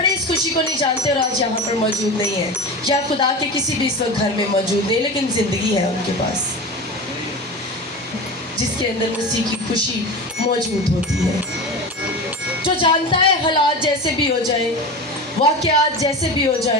इस खुशी को नहीं जानते और आज यहाँ पर मौजूद नहीं है, या खुदा के किसी भी इस वक्त घर में मौजूद नहीं, लेकिन ज़िंदगी है उनके पास जिसके अंदर मसीह की खुशी मौजूद होती है। जो जानता है हालात जैसे भी हो जाए, वाक़यात जैसे भी हो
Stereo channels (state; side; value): normal; both; correlation 0.27